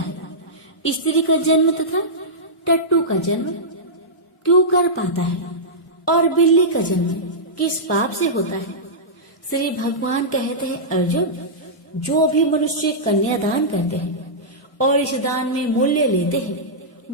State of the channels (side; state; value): both; normal; correlation -0.13